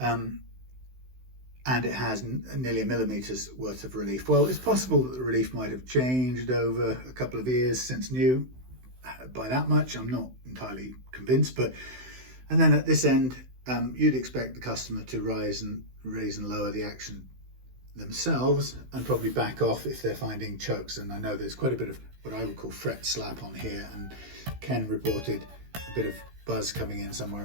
it has nearly 1 millimeter's worth of relief. Well, it's possible that the relief might have changed over a couple of years since new by that much. I'm not entirely convinced, but and then at this end, you'd expect the customer to raise and lower the action themselves, and probably back off if they're finding chokes. And I know there's quite a bit of what I would call fret slap on here, and Ken reported a bit of buzz coming in somewhere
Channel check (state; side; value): late; left; 16 ms